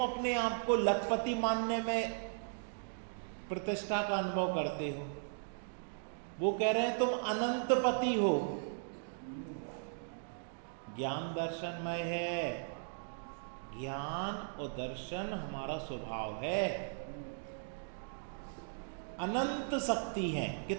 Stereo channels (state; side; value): silent; left; digital silence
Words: अपने आप को लखपति मानने में प्रतिष्ठा का अनुभव करते हो। वो कह रहे हैं तुम अनंत पति हो। ज्ञान दर्शनमय है। ज्ञान और दर्शन हमारा स्वभाव है। अनंत शक्ति है।